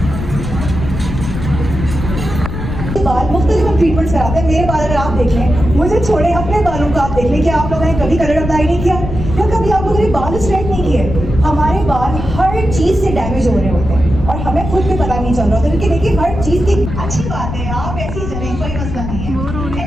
ट्रीटमेंट कराते हैं। मेरे बाल अगर आप देख लें, मुझे छोड़े अपने बालों को आप देख लें कि आप लोगों ने कभी कलर अप्लाई नहीं किया या कभी आप लोगों ने बाल स्ट्रेट नहीं किए। हमारे बाल हर चीज से डैमेज हो रहे होते हैं और हमें खुद भी पता नहीं चल रहा होता, क्योंकि देखिए हर चीज की अच्छी बात है, आप ऐसी ही चलें, कोई मसला नहीं है।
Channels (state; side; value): noise; left; rumble, 6 dB below the sound